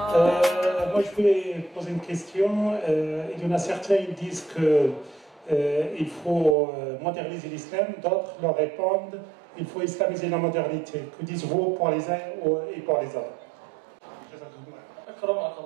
Moi je voulais poser une question. Il y en a certains qui disent que il faut moderniser l'islam, d'autres leur répondent il faut islamiser la modernité. Que dites-vous pour les uns et pour les autres?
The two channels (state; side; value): drops out; left; at 6.6 s